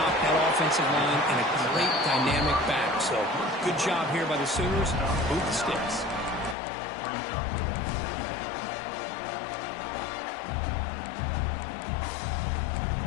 that offensive line and a great dynamic back. So good job here by the Sooners. Move the sticks.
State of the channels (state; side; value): drops out; right; at 6.6 s